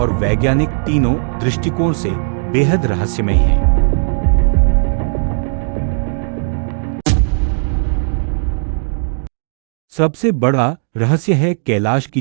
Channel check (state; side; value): silent; left; digital silence